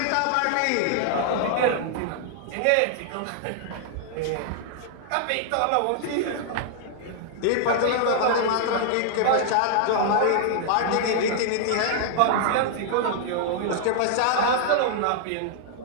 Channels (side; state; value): both; different; correlation -0.01